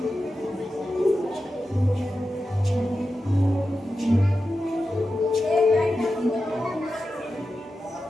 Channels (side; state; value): both; normal; correlation 0.91